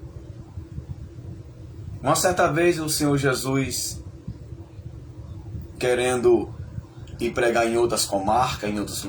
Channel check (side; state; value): both; identical; correlation 1.00